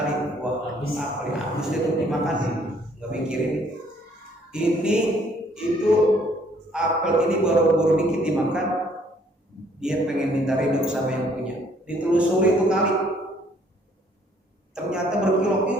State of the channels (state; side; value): normal; both; correlation 0.63